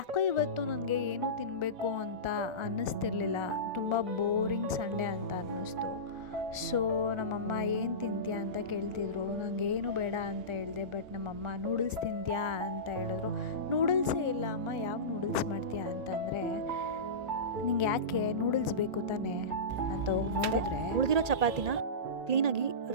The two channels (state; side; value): late; left; 1.4 ms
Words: ಇವತ್ತು ನನಗೆ ಏನೂ ತಿನ್ನಬೇಕು ಅಂತ ಅನ್ನಿಸ್ತಿರ್ಲಿಲ್ಲ. ತುಂಬ ಬೋರಿಂಗ್ ಸಂಡೇ ಅಂತ ಅನ್ನಿಸ್ತು. ಸೊ ನಮ್ಮಮ್ಮ ಏನು ತಿಂತೀಯಾ ಅಂತ ಕೇಳ್ತಿದ್ರು. ನನಗೇನು ಬೇಡ ಅಂತ ಹೇಳಿದೆ. ಬಟ್ ನಮ್ಮಮ್ಮ ನೂಡಲ್ಸ್ ತಿಂತೀಯಾ ಅಂತ ಹೇಳಿದ್ರು. ನೂಡಲ್ಸೇ ಇಲ್ಲ ಅಮ್ಮ, ಯಾವ ನೂಡಲ್ಸ್ ಮಾಡ್ತೀಯಾ ಅಂತಂದರೆ, ನಿಂಗೆ ಯಾಕೆ ನೂಡಲ್ಸ್ ಬೇಕು ತಾನೇ ಅಂತ ಹೋಗಿ ನೋಡಿದ್ರೆ, ಉಳಿದಿರೋ ಚಪಾತಿನ ಕ್ಲೀನಾಗಿ